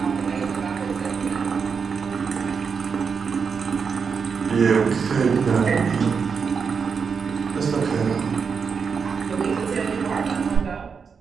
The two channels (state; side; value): quieter; left; 5.9 dB